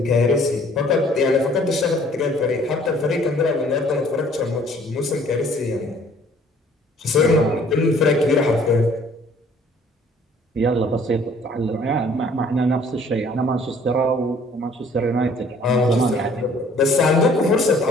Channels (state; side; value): normal; both; correlation 0.57